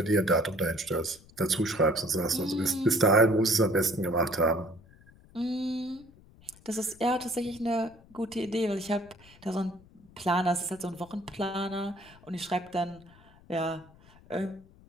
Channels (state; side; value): noise; left; rumble, 25 dB below the sound